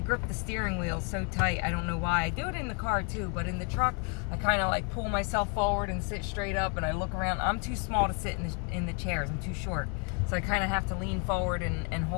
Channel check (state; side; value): quieter; right; 35.9 dB